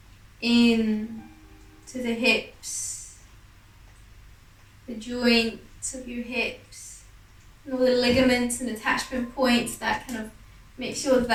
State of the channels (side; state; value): both; identical; correlation 1.00